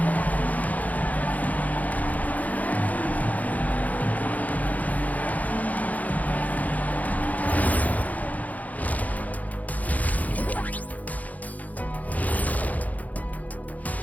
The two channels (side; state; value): right; late; 0.077 ms